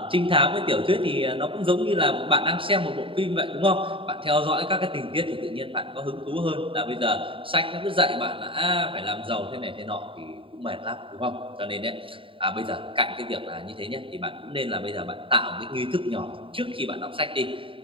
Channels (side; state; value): left; late; 0.25 ms